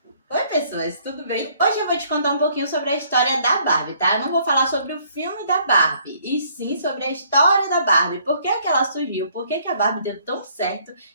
Oi, pessoas, tudo bem? Hoje eu vou te contar um pouquinho sobre a história da Barbie, tá? Eu não vou falar sobre o filme da Barbie, e sim sobre a história da Barbie. Por que ela surgiu, por que a Barbie deu tão certo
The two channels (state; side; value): inverted; both; correlation -0.63